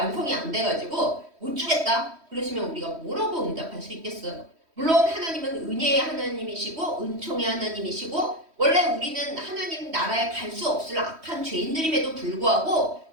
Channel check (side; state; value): left; late; 3.1 ms